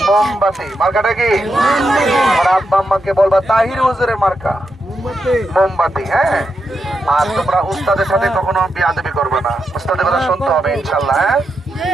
মোমবাতি। মার্কাটা কি? আমার আব্বা আম্মাকে বলবা তাহির হুজুরের মার্কা মোমবাতি। হ্যাঁ, আর তোমরা উস্তাদের সাথে কখনো বিয়াদবি করবে না, উস্তাদের কথা শুনতে হবে ইনশাআল্লাহ। হ্যাঁ,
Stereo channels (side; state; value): both; normal; correlation 0.85